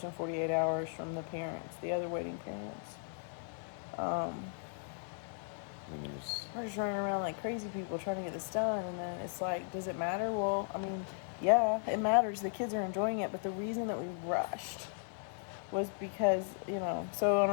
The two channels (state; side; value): silent; right; digital silence